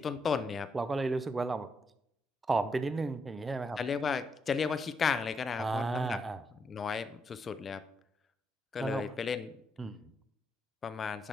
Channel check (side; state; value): both; normal; correlation 0.80